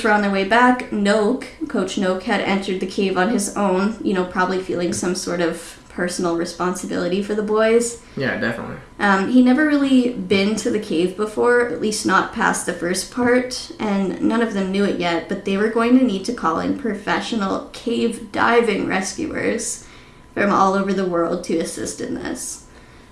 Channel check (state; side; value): identical; both; correlation 1.00